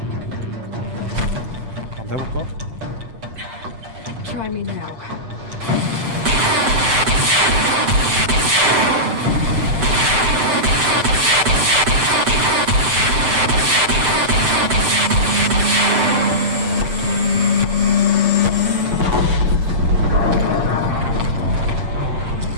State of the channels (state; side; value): late; left; 7.7 ms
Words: 한번 해볼까? Try me now.